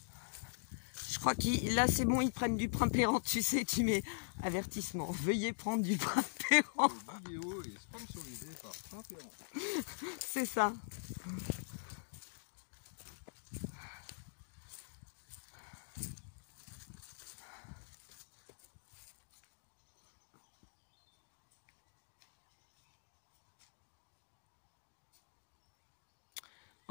Je crois que là, c'est bon, ils prennent du primpérant, tu sais, tu mets avertissement. Veuillez prendre du primpérant. La vidéo est sponsorisée par Primpérant. C'est ça.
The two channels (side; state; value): right; silent; digital silence